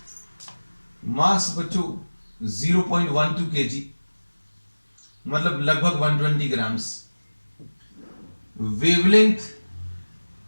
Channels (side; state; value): both; inverted; correlation -1.00